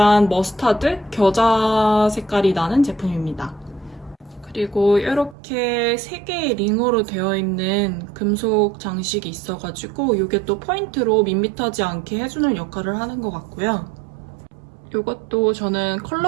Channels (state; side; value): drops out; left; at 5.4 s